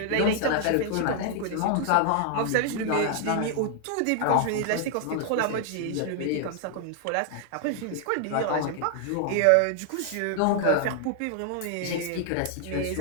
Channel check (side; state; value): both; different; correlation 0.00